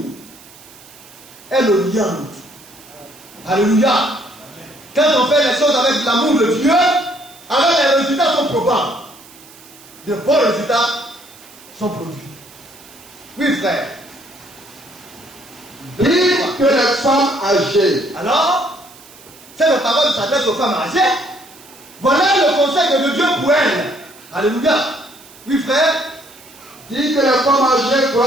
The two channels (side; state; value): right; noise; hiss, 22 dB below the sound